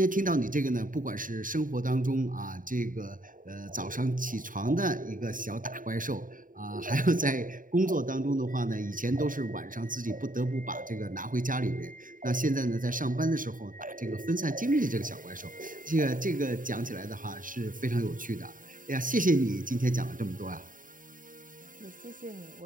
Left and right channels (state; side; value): late; left; 0.39 ms